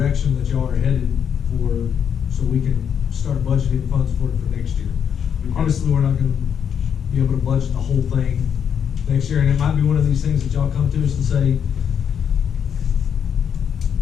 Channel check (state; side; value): quieter; right; 8.0 dB